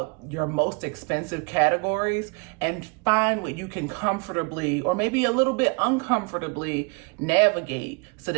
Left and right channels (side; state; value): left; quieter; 31.6 dB